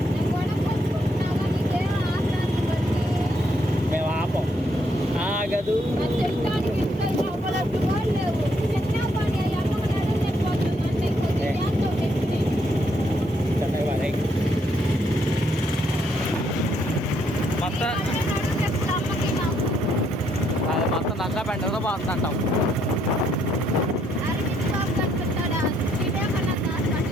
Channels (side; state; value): both; normal; correlation 0.72